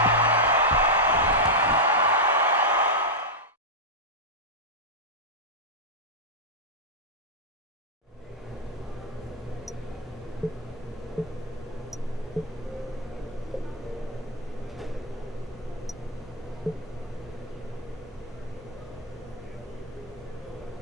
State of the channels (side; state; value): both; normal; correlation -0.03